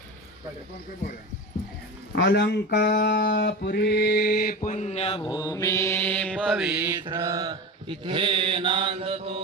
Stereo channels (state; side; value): normal; both; correlation 0.27